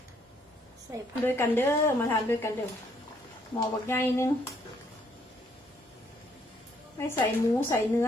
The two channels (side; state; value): both; normal; correlation 0.68